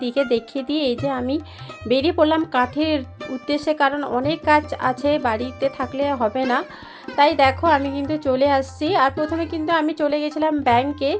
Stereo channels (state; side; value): identical; both; correlation 1.00